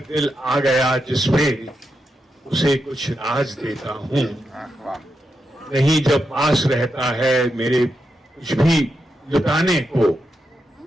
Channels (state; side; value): normal; both; correlation 0.85